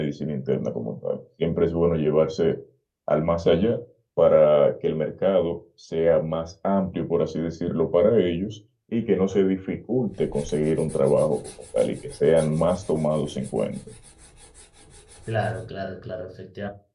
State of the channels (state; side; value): identical; both; correlation 1.00